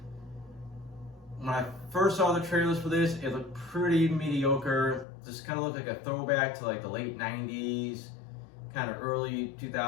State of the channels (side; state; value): right; drops out; at 5.1 s